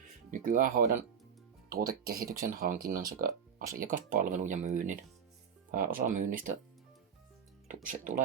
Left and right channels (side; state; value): left; quieter; 7.4 dB